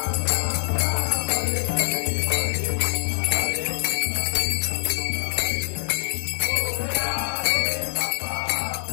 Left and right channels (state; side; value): silent; right; 62 dB below the other